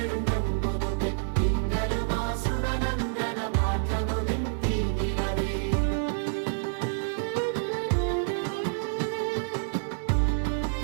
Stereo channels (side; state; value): left; silent; digital silence